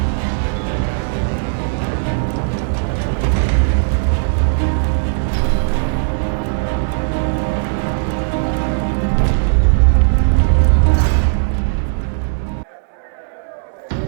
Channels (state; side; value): silent; left; digital silence